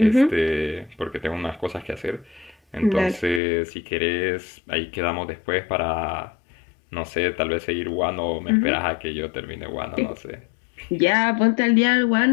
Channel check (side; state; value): right; drops out; at 3.4 s